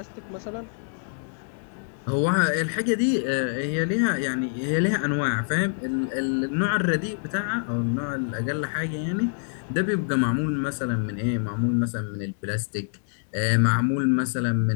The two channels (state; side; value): silent; right; digital silence